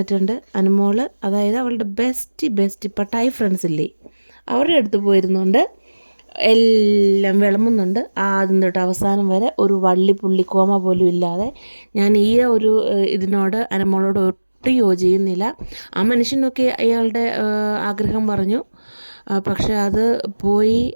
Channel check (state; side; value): inverted; both; correlation -1.00